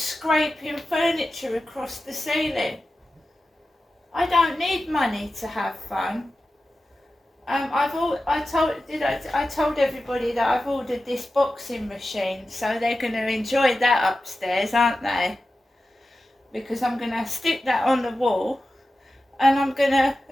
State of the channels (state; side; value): normal; both; correlation 0.93